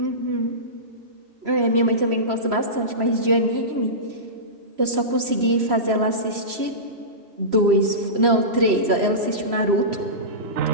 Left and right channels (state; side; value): late; left; 3.0 ms